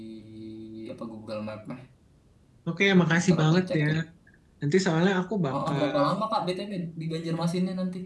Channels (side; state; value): both; identical; correlation 1.00